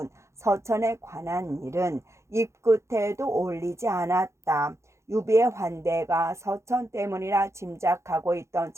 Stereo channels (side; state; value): left; late; 0.14 ms